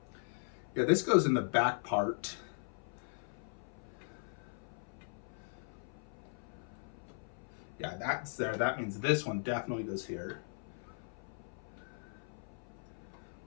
Yeah, this goes in the back part. Yeah, that's there. That means this one definitely goes here.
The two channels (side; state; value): right; silent; 52 dB below the other